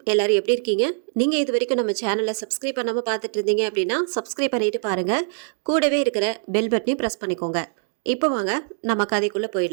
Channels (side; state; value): left; silent; 63 dB below the other